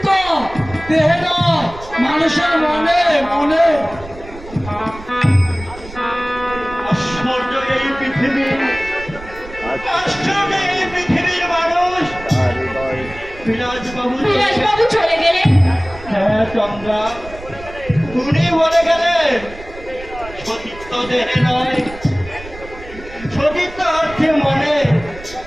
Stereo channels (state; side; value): noise; right; rumble, 16 dB below the sound